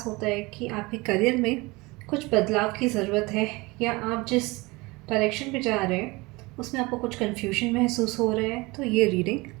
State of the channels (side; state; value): left; quieter; 23.7 dB